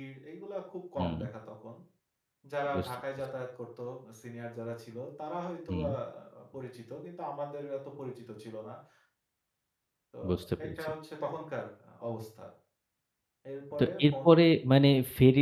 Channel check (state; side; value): identical; both; correlation 1.00